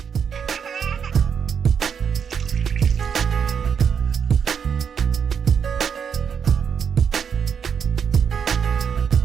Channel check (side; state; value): left; quieter; 7.1 dB